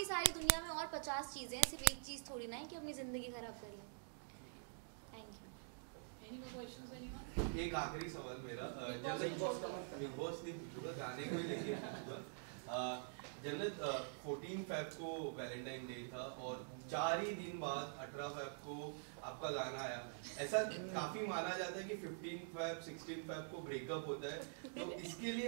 सारी दुनिया में और 50 चीज़ें हैं, सिर्फ एक चीज़ थोड़ी ना है कि अपनी ज़िंदगी खराब कर लें। एक आखिरी सवाल मेरा, बिग बॉस नहीं पूछूंगा, गाने को ही लेके पूछूंगा। जन्नत, 14 फेब को वैलेंटाइन डे था और 4 ही दिन बाद 18 फेब को आपका गाना आया। ऐसा काफी माना जाता है कि 15 फेब 16 फेब को ब्रेकअप होता है, तो इसके लिए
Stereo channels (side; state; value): left; silent; digital silence